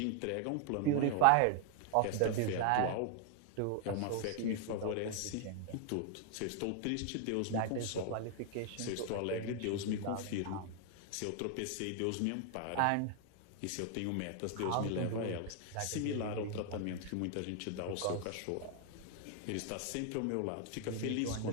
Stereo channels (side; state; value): both; different; correlation 0.00